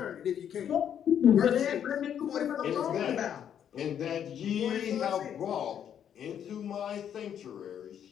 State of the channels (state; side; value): quieter; right; 9.2 dB